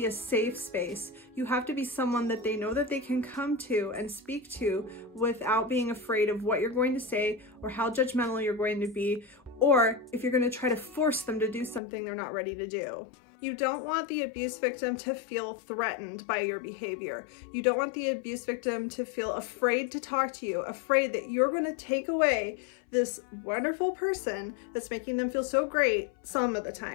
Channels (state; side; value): drops out; right; at 11.8 s